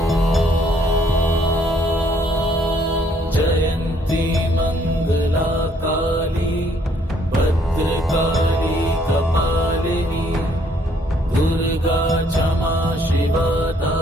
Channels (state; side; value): normal; both; correlation 0.66